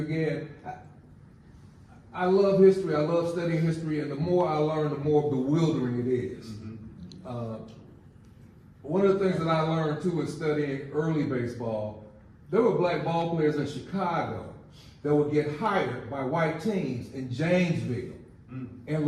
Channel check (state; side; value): identical; both; correlation 1.00